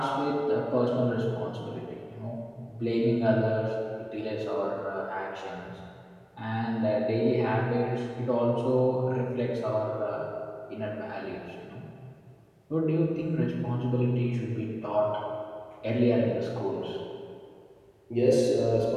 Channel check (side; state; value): both; identical; correlation 1.00